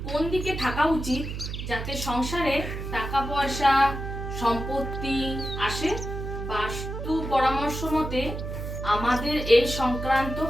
কোন দিকে থাকা উচিত যাতে সংসারে টাকা পয়সা সম্পত্তি আসে? বাস্তু পরামর্শ মতে আমাদের এই সংক্রান্ত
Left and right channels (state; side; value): noise; right; hum, 6 dB below the sound